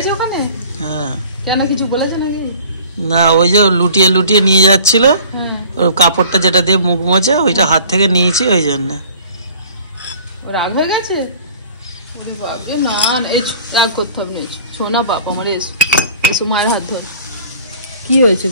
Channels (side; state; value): both; inverted; correlation -0.49